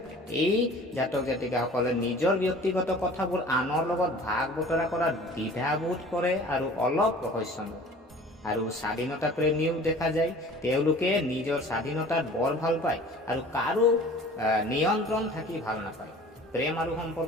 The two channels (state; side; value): normal; both; correlation 0.45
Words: এই জাতক জাতিকাসকলে নিজৰ ব্যক্তিগত কথাবোৰ আনৰ লগত ভাগ বতৰা কৰাত দ্বিধাবোধ কৰে আৰু অলপ ৰহস্যময় আৰু স্বাধীনতা প্ৰেমীও দেখা যায়। তেওঁলোকে নিজৰ স্বাধীনতাত বৰ ভাল পায় আৰু কাৰো নিয়ন্ত্ৰণ থাকি ভাল নাপায়। প্ৰেম আৰু